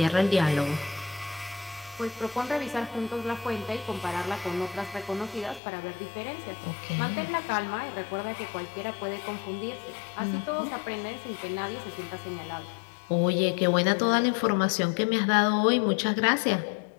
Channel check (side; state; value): right; drops out; at 5.6 s